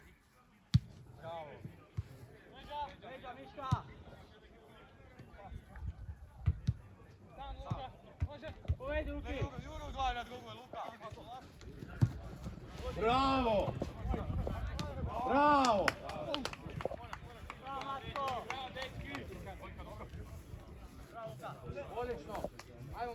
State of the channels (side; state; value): both; identical; correlation 1.00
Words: Bravo. Leđa, Miška! Sam, Luka, može? Povedi, Luki! Juro gledaj na drugoj, Luka! Bravo! Odlično! Ajmo